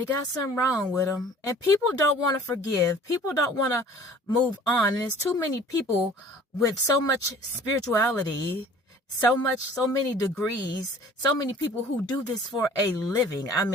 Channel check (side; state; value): both; normal; correlation 0.49